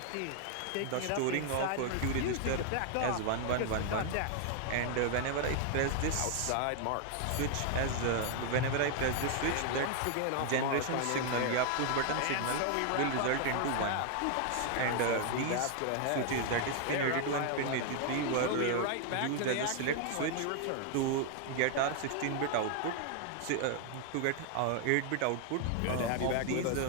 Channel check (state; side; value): different; both; correlation 0.00